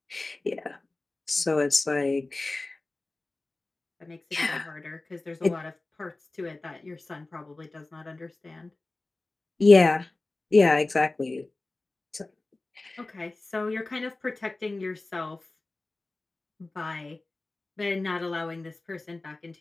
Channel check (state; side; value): quieter; right; 3.1 dB